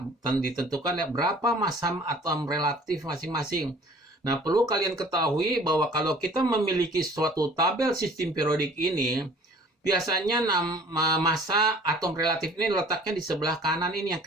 ditentukan ya, berapa massa atom relatif masing-masing. Nah, perlu kalian ketahui bahwa kalau kita memiliki suatu tabel sistem periodik ini, biasanya massa atom relatif ini letaknya di sebelah kanan ini yang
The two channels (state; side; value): normal; both; correlation 0.51